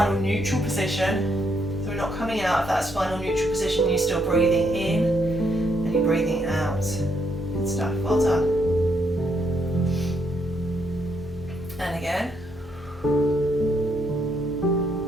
neutral position. So we're not coming out of that spinal neutral position. You're still breathing in and you're breathing out. Good stuff. Well done. And again.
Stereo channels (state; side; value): normal; both; correlation 0.75